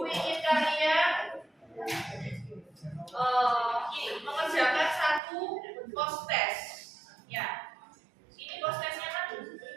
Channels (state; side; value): drops out; left; at 5.2 s